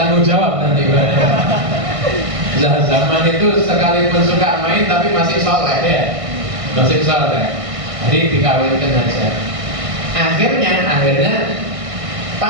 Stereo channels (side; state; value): left; late; 1.5 ms